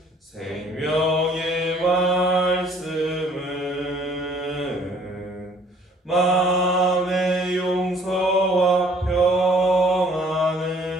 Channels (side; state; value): both; normal; correlation 0.59